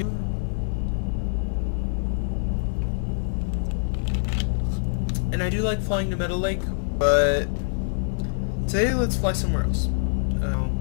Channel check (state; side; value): silent; right; digital silence